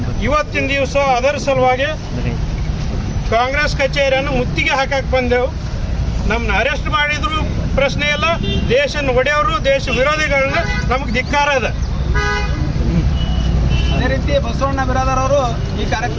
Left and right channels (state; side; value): identical; both; correlation 1.00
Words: ಇವತ್ತಿನ ದಿವಸ ಅದರ ಸಲುವಾಗಿ ಕಾಂಗ್ರೆಸ್ ಕಚೇರಿಯನ್ನು ಮುತ್ತಿಗೆ ಹಾಕಕ್ಕೆ ಬಂದೆವು. ನಮ್ಮನ್ನ ಅರೆಸ್ಟ್ ಮಾಡಿದ್ರು ಪ್ರಶ್ನೆ ಇಲ್ಲ, ದೇಶ ಒಡೆಯವರು ದೇಶ ವಿರೋಧಿಗಳನ್ನ ನಮಗೆ ಧಿಕ್ಕಾರ ಅದ. ಅದೇ ರೀತಿ ಬಸವಣ್ಣ ಬಿರಾದರ್ ಅವರು ಈ